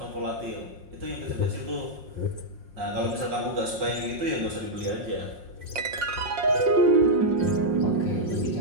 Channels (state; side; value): late; left; 5.5 ms